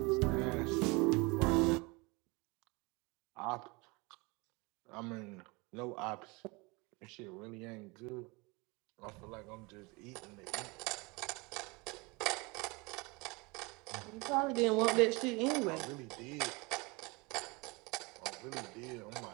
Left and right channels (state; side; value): quieter; left; 26.5 dB